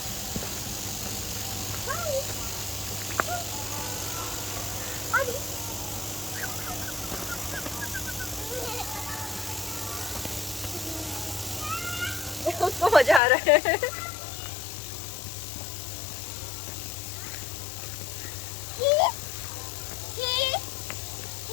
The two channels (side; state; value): right; drops out; at 13.2 s